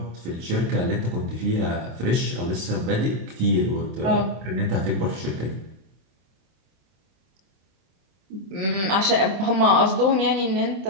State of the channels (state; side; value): late; left; 26 ms